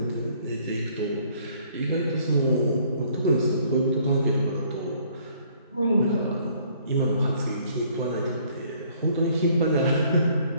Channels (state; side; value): inverted; both; correlation -0.61